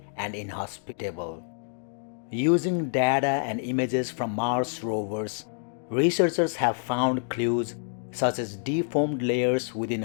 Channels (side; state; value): right; silent; digital silence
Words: and inhospitable. Using data and images from Mars rovers, researchers have found clues such as deformed layers within